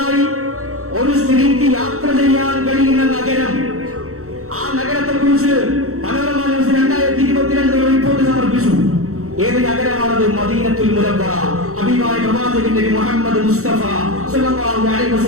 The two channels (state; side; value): late; left; 0.64 ms